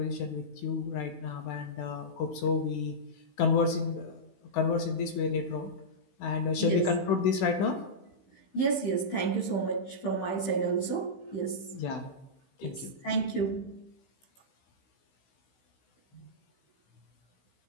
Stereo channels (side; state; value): right; late; 16 ms